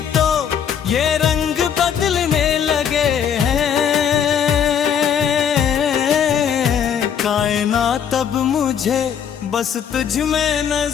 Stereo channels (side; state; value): right; quieter; 8.2 dB